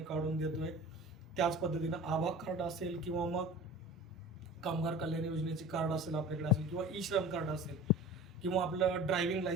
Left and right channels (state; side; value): normal; both; correlation 0.38